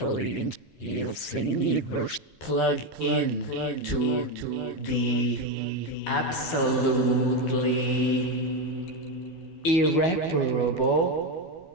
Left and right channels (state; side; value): late; right; 12 ms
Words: you'll see plug in to the absolutely irreparable